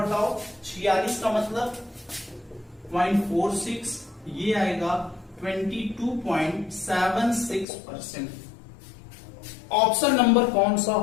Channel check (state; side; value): drops out; right; at 7.7 s